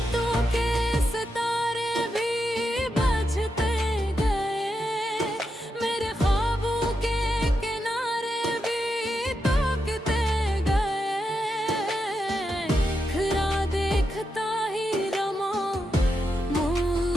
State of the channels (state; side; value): normal; both; correlation 0.85